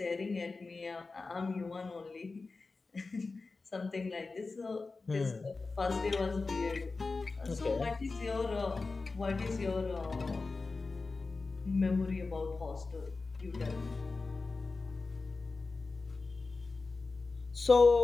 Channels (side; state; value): right; quieter; 3.9 dB